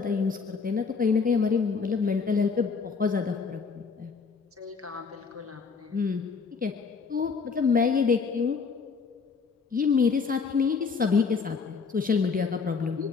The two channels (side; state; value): right; quieter; 5.2 dB